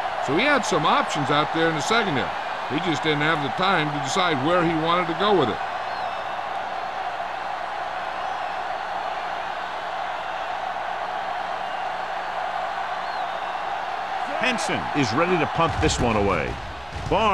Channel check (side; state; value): both; identical; correlation 1.00